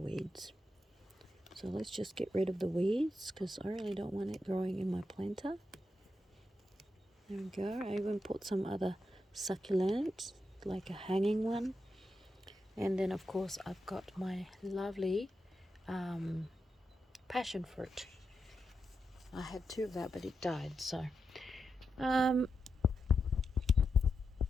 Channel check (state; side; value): normal; both; correlation 0.86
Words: So let's just get rid of the weeds because I really don't want it growing in my planter. There we go. I even put some other succulents, like a hanging one. And then of course I've got my lovely passion fruit. I had 2 of that, but it died, so